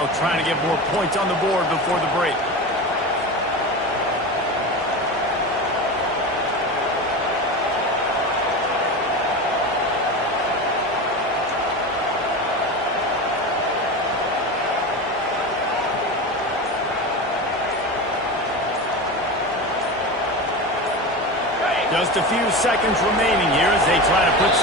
try to get more points on the board before the break. Just a few seconds remaining here as they try to put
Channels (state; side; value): normal; both; correlation 0.25